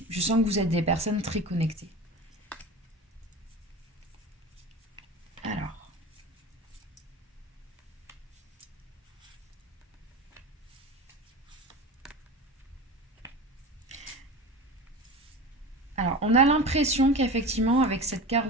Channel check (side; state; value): both; normal; correlation 0.31